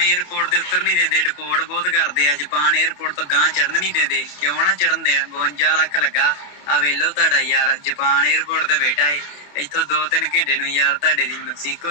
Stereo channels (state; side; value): late; right; 28 ms